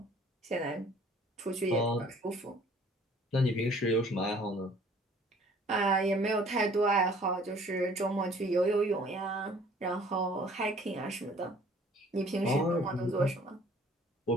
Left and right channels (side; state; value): both; normal; correlation 0.55